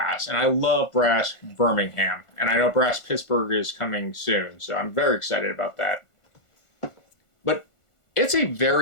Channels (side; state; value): right; late; 1.4 ms